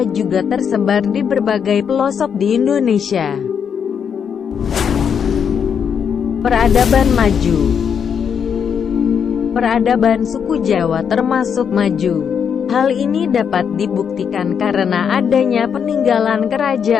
juga tersebar di berbagai pelosok di Indonesia. Peradaban maju. Peradaban suku Jawa termasuk maju. Hal ini dapat dibuktikan karena adanya peninggalan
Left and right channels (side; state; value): right; quieter; 7.3 dB